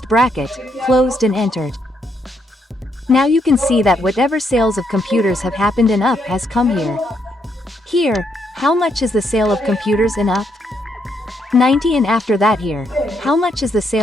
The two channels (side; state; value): both; normal; correlation 0.76